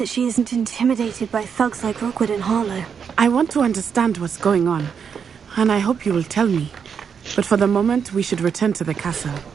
she isn't intimidated by thugs like Rookwood and Harlow. I want to understand what's going on, and I hope you will tell me. But for the moment, we should return to the castle.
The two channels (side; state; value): left; quieter; 6.9 dB